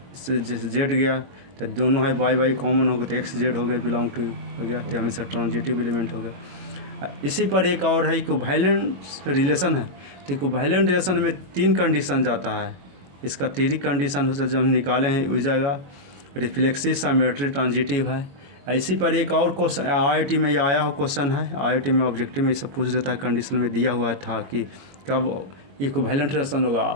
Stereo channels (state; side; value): late; left; 22 ms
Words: से जेड गया, तो दोनों है वाई वाई कॉमन हो गया, तो एक्स जेड हो गया, बिलोंग टू हो गया, तो हमेशा ट्रांजिटिव एलिमेंट हो गया। इसी पर एक और है इक्विवेलेंट रिलेशन है। तो इक्विवेलेंट रिलेशन में 3 कंडीशन जाता है, इसका 3 कंडीशन हो, जब हम निकाले हैं हो जाएगा रिफ्लेक्सिव, साइमेट्री, ट्रांजिटिव है। इसी पर एक और क्वेश्चन IIT में ये आया हो क्वेश्चन है, IIT में ऑब्जेक्टिव में सब पूछ देता है, कंडीशन में दिया हुआ था कि कब इक्विवेलेंट रिलेशन होगा।